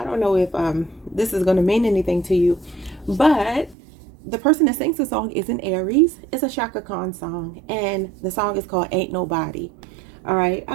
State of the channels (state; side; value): drops out; left; at 3.8 s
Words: don't know if this is going to mean anything to you, but the person that sings the song is an Aries. It's a Shaka Khan song, and the song is called Ain't Nobody. All right, I